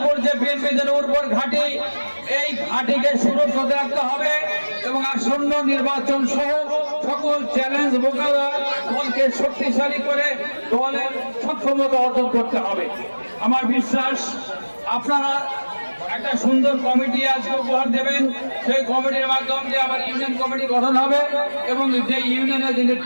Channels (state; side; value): inverted; both; correlation -1.00